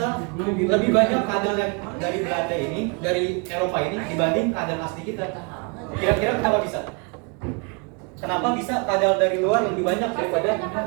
lebih banyak kadal yang dari Belanda ini, dari Eropa ini dibanding kadal asli kita. Kira-kira kenapa bisa? Kenapa bisa kadal dari luar lebih banyak daripada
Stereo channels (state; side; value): quieter; left; 34.4 dB